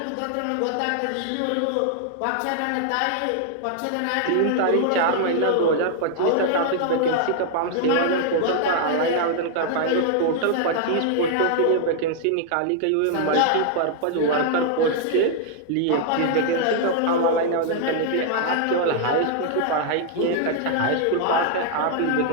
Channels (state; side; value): different; both; correlation -0.01